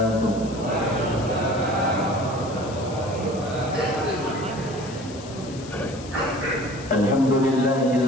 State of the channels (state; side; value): noise; left; hiss, 17 dB below the sound